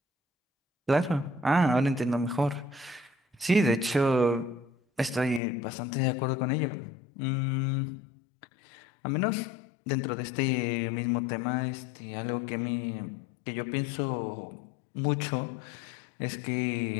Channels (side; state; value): right; drops out; at 5.4 s